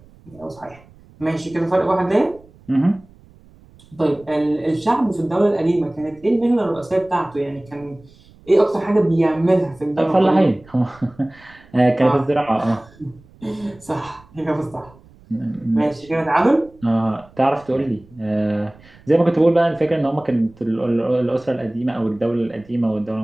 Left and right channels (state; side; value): noise; right; rumble, 26 dB below the sound